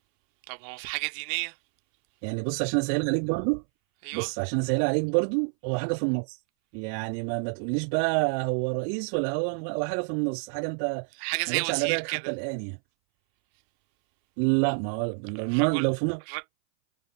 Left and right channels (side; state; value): left; silent; 60 dB below the other